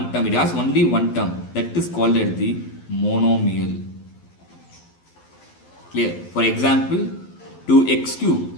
term. It has only one term. That is called as the monomial. Clear? For example, 2x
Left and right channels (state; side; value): late; right; 12 ms